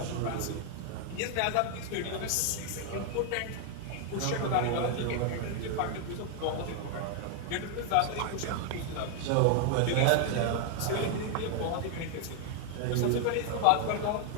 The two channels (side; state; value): both; different; correlation 0.00